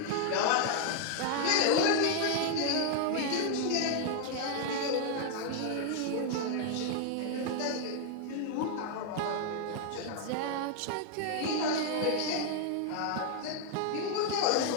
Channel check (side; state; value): both; different; correlation 0.00